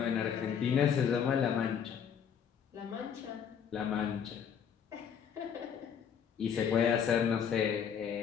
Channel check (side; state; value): right; quieter; 7.7 dB